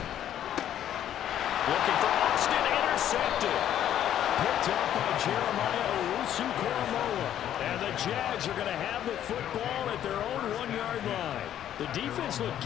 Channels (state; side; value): quieter; right; 10.9 dB